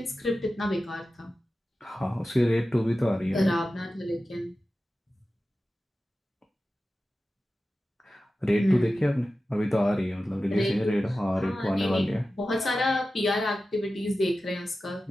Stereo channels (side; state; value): both; normal; correlation 0.94